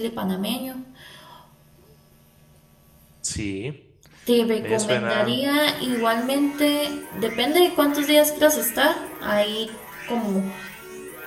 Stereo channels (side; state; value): both; identical; correlation 1.00